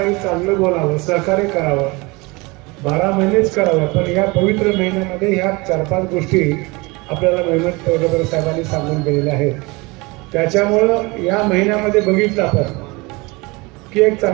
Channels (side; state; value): left; quieter; 25.2 dB